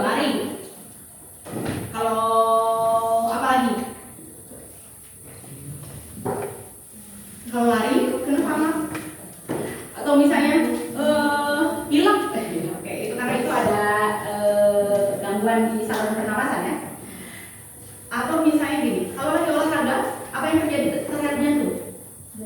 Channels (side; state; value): both; identical; correlation 1.00